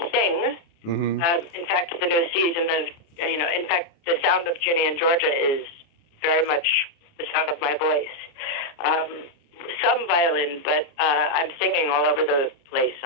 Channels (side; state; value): right; late; 28 ms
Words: sing. In fact, the new season of, in fact, the sound of Ginny and Georgia is very much the sound of my voice. Some violin, but I'm singing all over the place